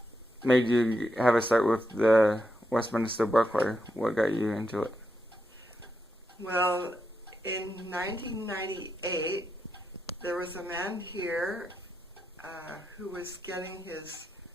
made you have a start with the Westminster Bell Choir? What got you into it? Well, in 1998, there was a man here who was getting his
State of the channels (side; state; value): both; normal; correlation 0.84